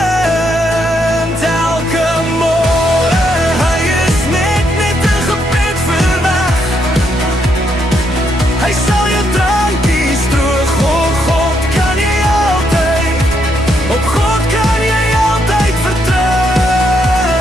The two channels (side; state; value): both; normal; correlation 0.76